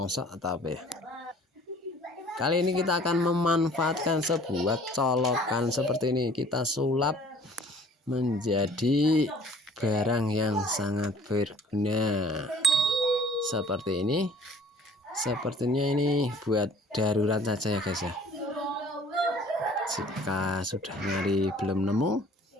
atau apa ya. Kali ini kita akan memanfaatkan sebuah colokan seperti ini. Kita sulap menjadi barang yang sangat berguna seperti ini. Sepertinya ini buat darurat saja ya guys ya. Jika sudah nyari belum nemu,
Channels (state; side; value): normal; both; correlation 0.52